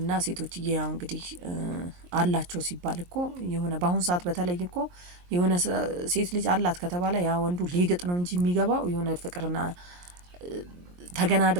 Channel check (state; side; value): late; left; 23 ms